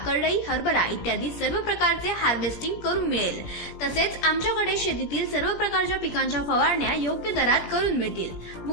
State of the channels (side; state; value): right; late; 17 ms